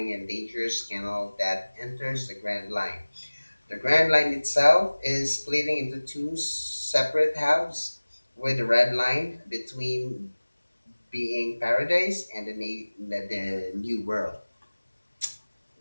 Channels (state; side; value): inverted; both; correlation -1.00